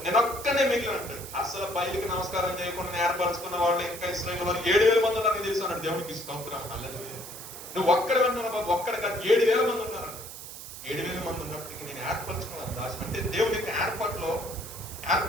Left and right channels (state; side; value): noise; right; hiss, 12 dB below the sound